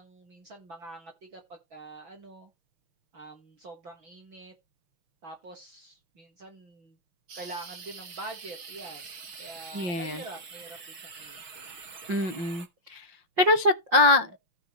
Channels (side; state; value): left; late; 6.3 ms